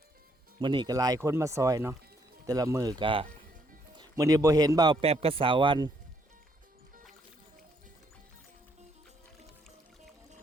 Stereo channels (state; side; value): normal; both; correlation 0.70